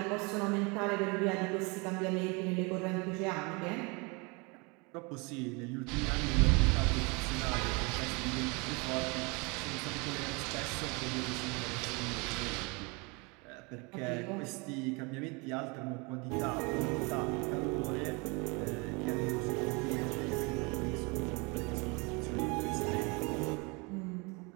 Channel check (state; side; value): quieter; left; 29.3 dB